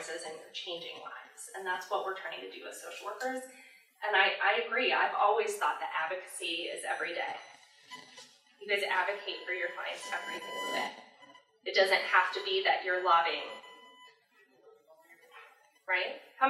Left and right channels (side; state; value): both; identical; correlation 1.00